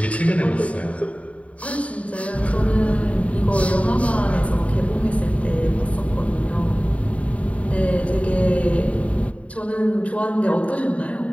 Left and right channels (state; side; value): late; right; 0.066 ms